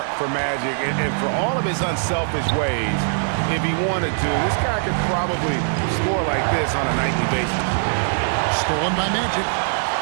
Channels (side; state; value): left; silent; 65 dB below the other